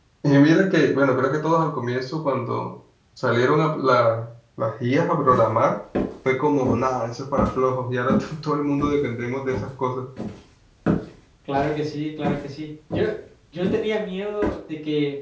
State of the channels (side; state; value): both; identical; correlation 1.00